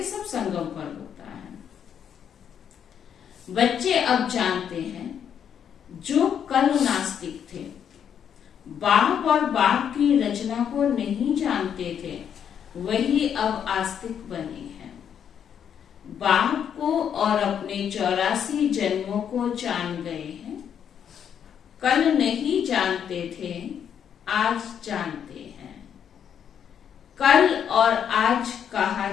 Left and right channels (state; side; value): quieter; right; 8.5 dB